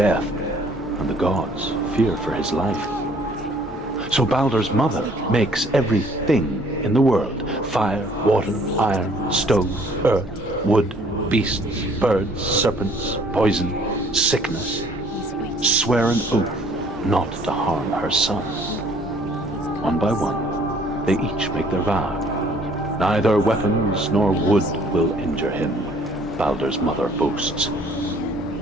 and the gods fear for his life. So Baldur's mother makes everything in the world: fire, water, iron, stone, earth, wood, beasts, birds, serpents, poison, sickness, swear an oath not to harm her son. One by one, they each make their vow. Neither weapons nor wood will injure him, Baldur's mother boasts.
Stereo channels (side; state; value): both; normal; correlation 0.58